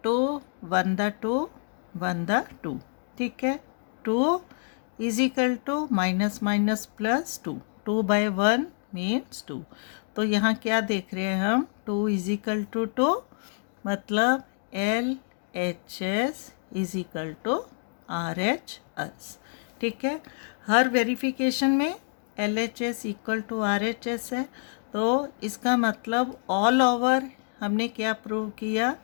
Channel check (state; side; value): silent; right; digital silence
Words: 2 1 द 2 1 द 2। ठीक है, 2 is equal to minus minus plus 2, 2 by 1 means 2। तो यहाँ क्या देख रहे हैं हम, 2 इज इक्वल टू 2, मतलब LHS is equal to RHS। ठीक है, हर वेरिफिकेशन में LHS इक्वल टू RHS है, तो इसका मतलब ऑल ओवर हमने क्या प्रूव किया,